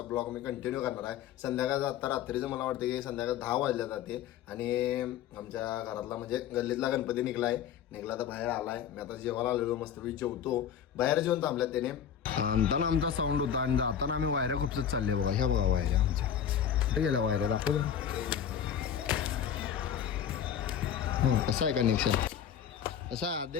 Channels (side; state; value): right; quieter; 8.9 dB